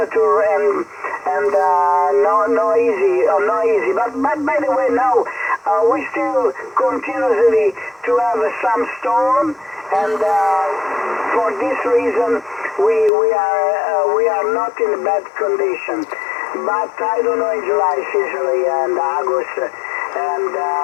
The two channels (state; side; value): drops out; right; at 13.1 s